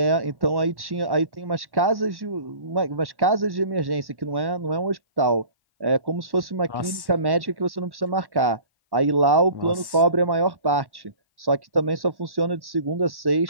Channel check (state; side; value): late; left; 1.1 ms